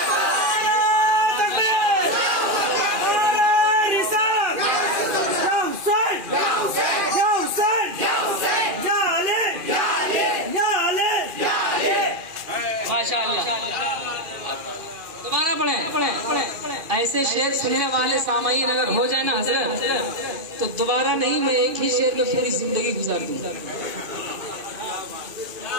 या ऐसे शेर सुनने वाले सामाईन अगर हो जाए ना हजरत, तो दोबारा नहीं, मैं एक ही शेर में पूरी जिंदगी गुजार दूंगा।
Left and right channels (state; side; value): late; left; 2.4 ms